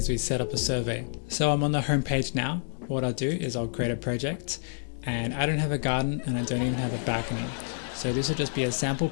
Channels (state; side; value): silent; right; digital silence